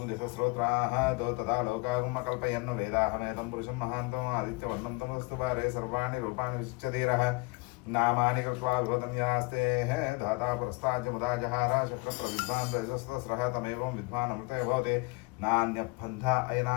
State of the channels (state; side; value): quieter; right; 28.2 dB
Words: दिशस्रोत्राः तो तथा लोकागम कल्पयन् वेदाहमेतं पुरुषं महान्तम् आदित्यवर्णं तमस्तु पारे सर्वाणि रूपाणि विशिच्य धीरः नामानि कृत्वा विभदन्यास्ते धाता पुरस्ताज्य मुदा जहार शक्रप्रविद्वान् रजस्तस्रः तमेवं विद्वान् अमृते भवते नान्यपन्था